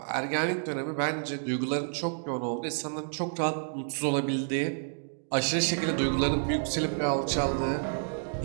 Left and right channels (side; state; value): left; silent; digital silence